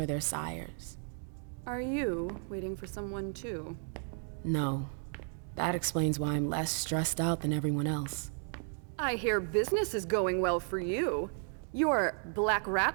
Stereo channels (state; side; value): silent; left; 55 dB below the other